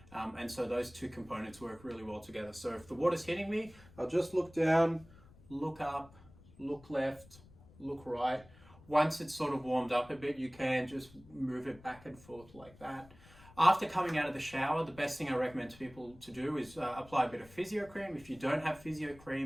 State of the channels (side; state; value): left; noise; rumble, 23 dB below the sound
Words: And so those two components work really well together. So if the water's hitting me, I'll just look down, look up, look left, look right. Once it's sort of warmed up a bit, you can just move it back and forth like that. After coming out of the shower, the best thing I recommend to people to do is apply a bit of physio cream. If you don't have physio